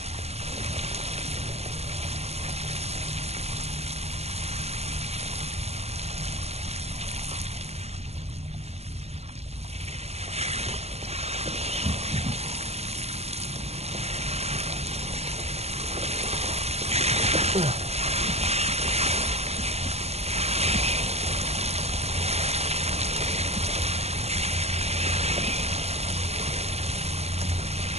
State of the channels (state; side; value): late; left; 0.31 ms